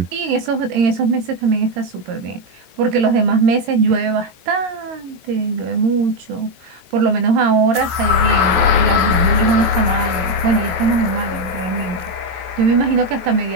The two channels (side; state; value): left; late; 14 ms